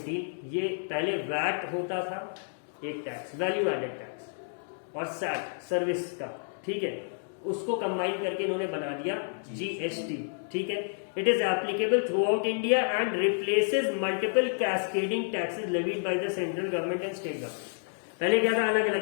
ये पहले वैट होता था, एक टैक्स, वैल्यू एडेड टैक्स, और सैट सर्विस का, ठीक है, उसको कंबाइन करके इन्होंने बना दिया जीएसटी. ठीक है. It is applicable through out India and replaces multiple cascading taxes levied by the central government and state government. पहले क्या था, अलग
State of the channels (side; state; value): right; silent; digital silence